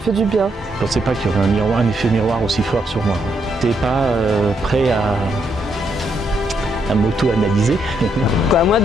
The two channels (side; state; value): both; normal; correlation 0.77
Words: du bien. Je ne pensais pas qu'il y aurait un effet miroir aussi fort sur moi. Je n'étais pas prêt à m'auto-analyser. Moi,